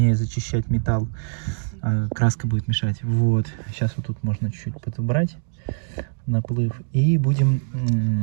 зачищать металл. Краска будет мешать. Вот. Сейчас вот тут можно чуть-чуть подобрать наплыв. И будем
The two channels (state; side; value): silent; left; digital silence